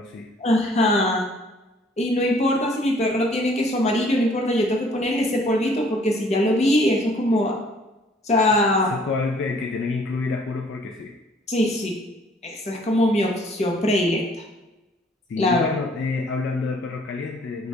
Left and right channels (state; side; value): normal; both; correlation 0.59